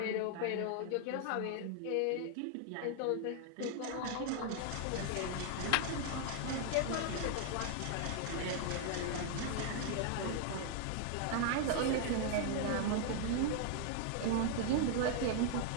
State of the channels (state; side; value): different; both; correlation 0.00